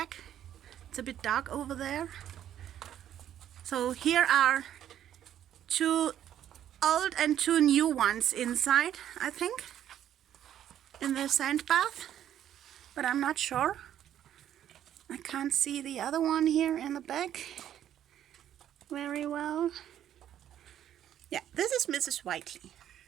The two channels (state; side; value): quieter; left; 10.8 dB